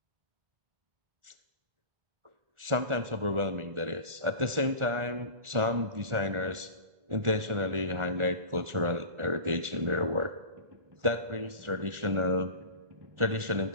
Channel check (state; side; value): late; left; 1.4 ms